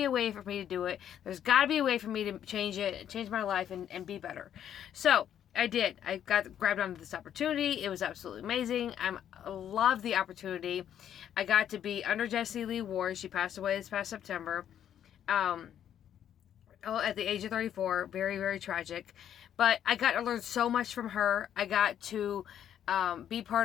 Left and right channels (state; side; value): quieter; right; 9.9 dB